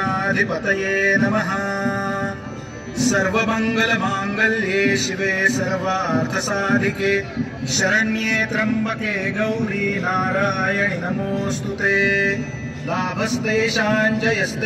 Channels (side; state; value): both; identical; correlation 1.00